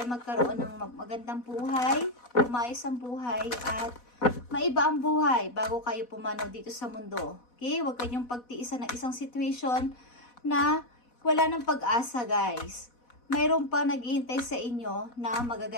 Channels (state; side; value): late; right; 4.1 ms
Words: magkaroon ng magandang buhay, umayos ang buhay, at maiba ang buhay bago kayo pumanaw dito sa mundo. Okay? Huwag kayong pagtiisan ng isang situation na wala ng pag-asa, guys. Mayroon pa naghihintay sa inyo na